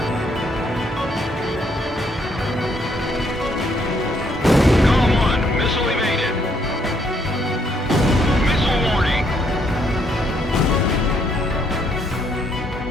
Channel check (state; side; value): normal; both; correlation 0.71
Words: GOM 1, missile evaded. Missile warning.